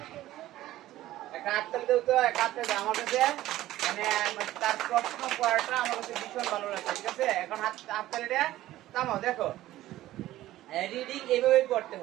আমার কাছে মানে তার প্রশ্ন পড়াটা আমার কাছে ভীষণ ভালো লাগছে। ঠিক আছে, এখন হাততালিটা থামাও। দেখো রিডিং এইভাবে করতে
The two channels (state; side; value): quieter; left; 15.0 dB